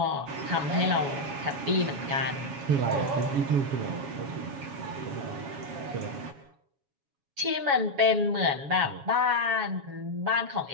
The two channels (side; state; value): left; late; 7.2 ms